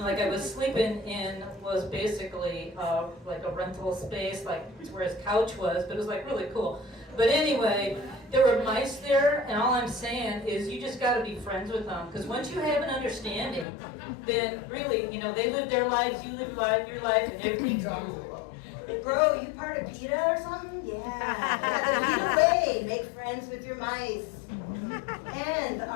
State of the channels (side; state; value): right; drops out; at 13.7 s